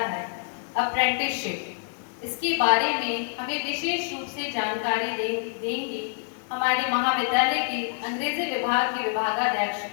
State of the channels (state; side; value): silent; right; 60 dB below the other